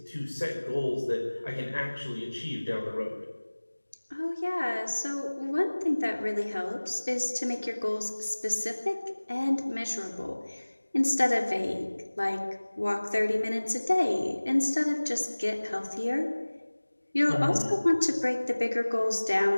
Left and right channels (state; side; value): inverted; both; correlation -1.00